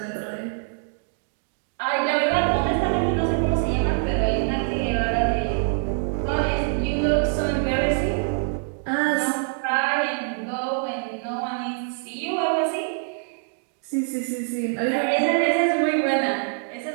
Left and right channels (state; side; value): silent; left; 61 dB below the other